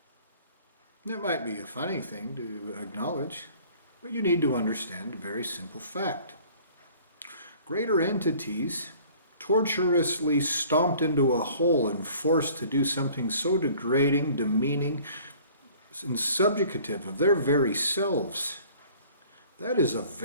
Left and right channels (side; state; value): both; inverted; correlation -0.51